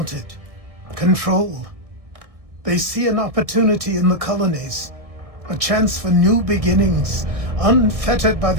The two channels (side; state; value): left; late; 1.6 ms